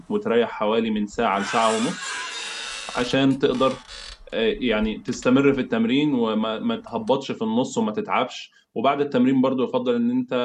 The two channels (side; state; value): both; identical; correlation 1.00